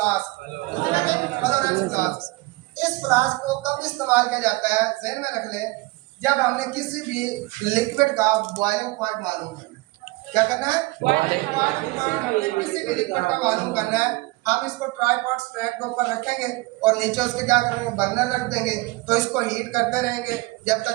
Florence flask. इस फ्लास्क को कब इस्तेमाल किया जाता है? ज़हन में रख ले, जब हमने किसी भी लिक्विड का बॉइलिंग पॉइंट मालूम करना है। क्या करना है? Boiling point. हमने किसी भी लिक्विड का मालूम करना है, हम इसको ट्राइपॉड स्टैंड के ऊपर रखेंगे और नीचे उसके क्या करेंगे? बर्नर रख देंगे। तो इसको हीट करते रहेंगे जब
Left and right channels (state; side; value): quieter; left; 22.8 dB